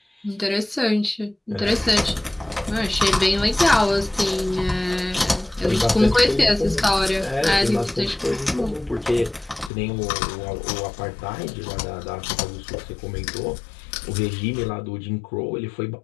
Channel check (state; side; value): drops out; right; at 9.7 s